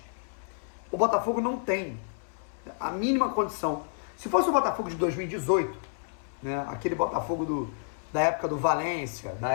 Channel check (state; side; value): silent; right; 58 dB below the other